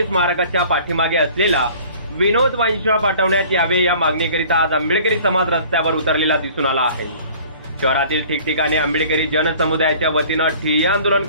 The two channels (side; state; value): both; inverted; correlation -0.49